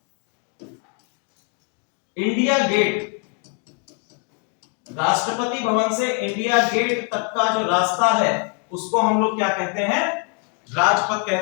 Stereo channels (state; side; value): quieter; right; 34.6 dB